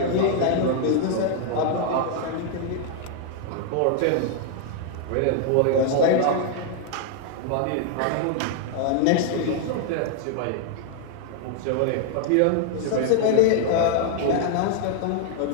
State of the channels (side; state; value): both; different; correlation 0.00